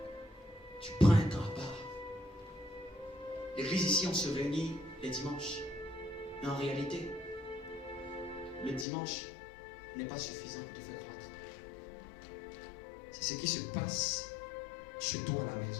tu prends un temps à part. L'église ici, on se réunit les dimanches. Mais en réalité, le dimanche n'est pas suffisant pour te faire croître. C'est ce qui se passe chez toi à la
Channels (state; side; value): drops out; right; at 8.8 s